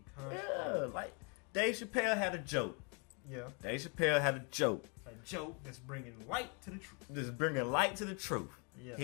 construct. Yeah, like Dave Chappelle had a joke. Yeah. Dave Chappelle had a joke. A joke that's bringing light to the truth. Just bringing light to the truth. Yeah.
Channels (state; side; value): quieter; right; 35.2 dB